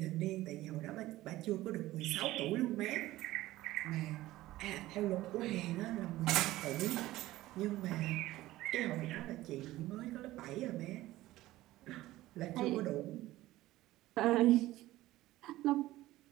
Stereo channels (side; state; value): left; quieter; 16.5 dB